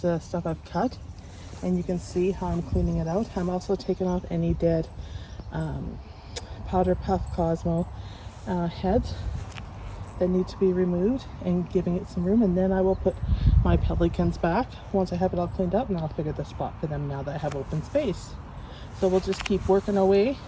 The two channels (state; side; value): identical; both; correlation 1.00